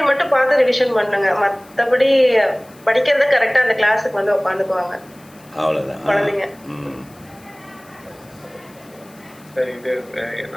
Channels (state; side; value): noise; left; hiss, 27 dB below the sound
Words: மட்டும் பார்த்து ரிவிஷன் பண்ணுங்க. மற்றபடி படிக்கிறது கரெக்டா அந்த கிளாஸுக்கு வந்து உட்காந்துக்குவாங்க அவ்வளோதான். குழந்தைங்க. ம். சரி, இது